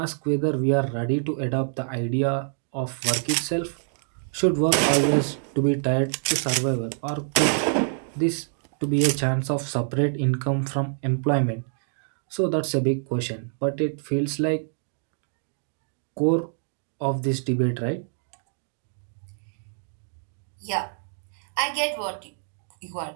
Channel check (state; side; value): silent; left; digital silence